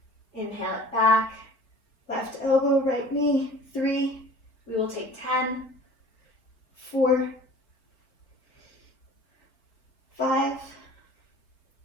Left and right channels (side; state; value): right; late; 3.6 ms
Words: Inhale it back, left elbow, right knee, 3. We will take 10, 4, 5,